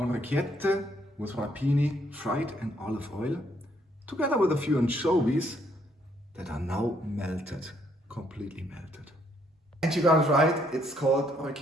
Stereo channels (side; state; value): both; normal; correlation 0.70